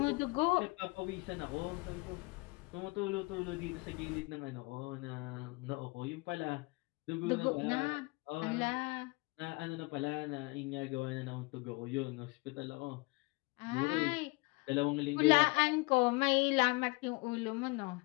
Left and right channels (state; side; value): quieter; right; 26.7 dB